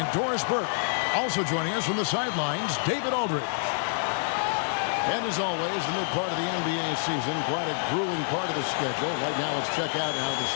Doris Burke. Also joining us from the sidelines, David Aldridge. And as always, the mid part of the NBA season, quite a grueling part of the schedule. Right now, let's check out how the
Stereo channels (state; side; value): silent; right; 60 dB below the other